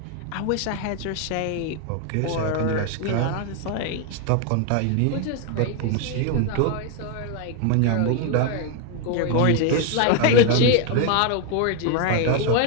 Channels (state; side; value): different; both; correlation 0.01